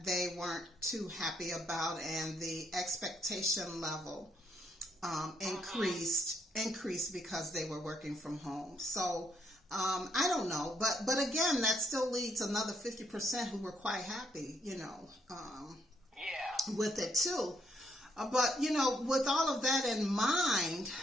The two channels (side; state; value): both; normal; correlation 0.74